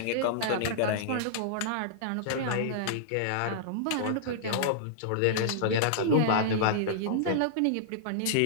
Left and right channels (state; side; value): different; both; correlation -0.02